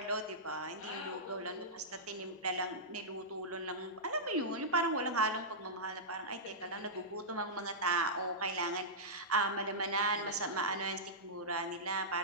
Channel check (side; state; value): both; normal; correlation -0.13